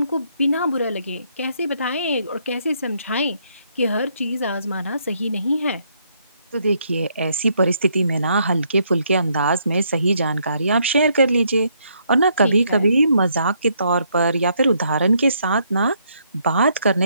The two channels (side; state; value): both; inverted; correlation -0.72